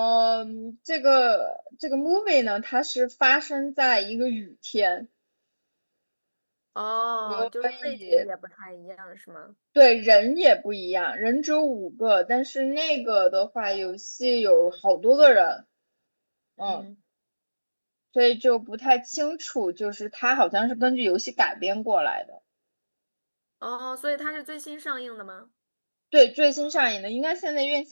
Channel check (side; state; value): both; inverted; correlation -1.00